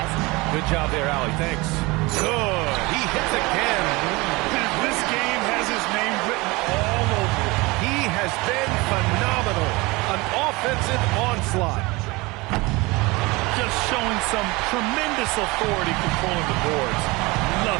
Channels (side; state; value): left; quieter; 23.7 dB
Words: Good job there, Allie. Thanks. Good. He hits again. This game has his name written all over it. He has been phenomenal. An offensive onslaught. Just showing some tremendous authority controlling the boards.